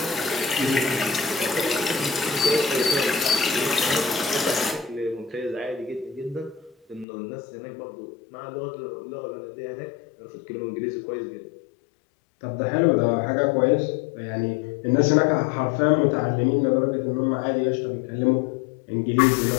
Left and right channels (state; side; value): drops out; right; at 7.1 s